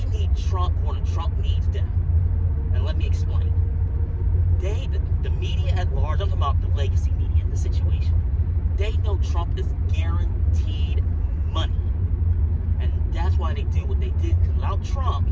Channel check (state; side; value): identical; both; correlation 1.00